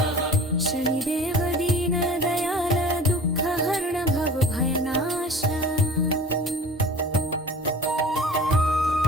शनिदेव दीनदयाल दुःखहरण भवभयनाश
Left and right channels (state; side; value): normal; both; correlation 0.42